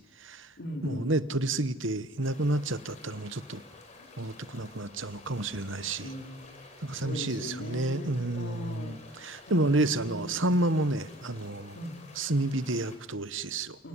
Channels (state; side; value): normal; both; correlation 0.50